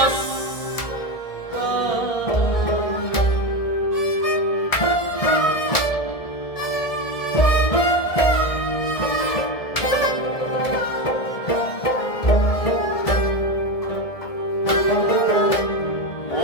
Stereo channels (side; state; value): right; late; 1.7 ms